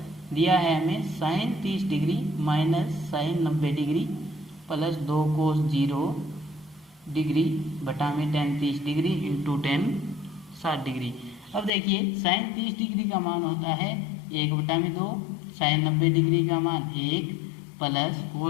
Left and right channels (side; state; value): right; drops out; at 11.7 s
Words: दिया है हमें sin 30 degree minus sin 90 degree plus 2 cos 0 degree बटा में tan 30 degree into tan 60 degree. अब देखिए sin 30 डिग्री का मान होता है 1/2, sin 90 डिग्री का मान 1 प्लस